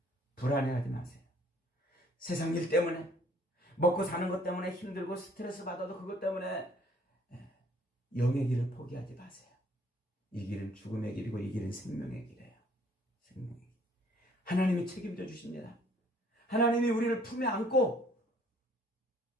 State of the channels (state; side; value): normal; both; correlation 0.60